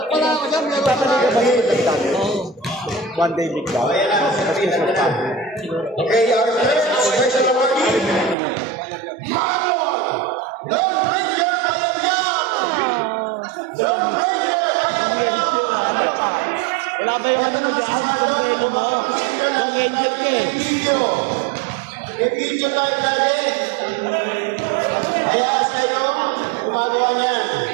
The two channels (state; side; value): drops out; left; at 8.3 s